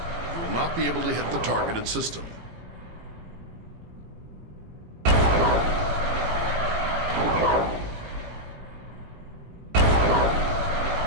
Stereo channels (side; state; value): left; late; 18 ms